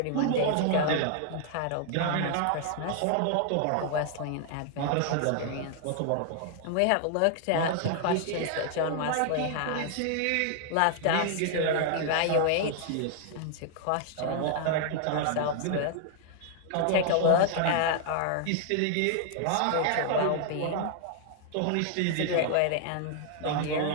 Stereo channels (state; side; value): different; both; correlation 0.00